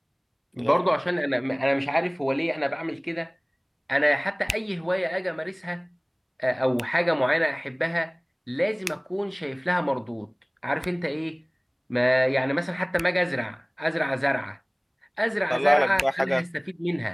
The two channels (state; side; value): identical; both; correlation 1.00